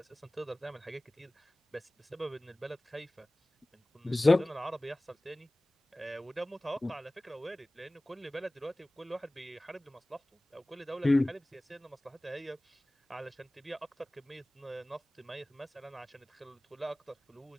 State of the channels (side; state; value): both; normal; correlation 0.98